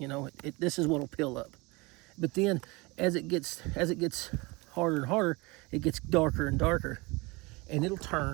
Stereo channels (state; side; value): quieter; left; 25.1 dB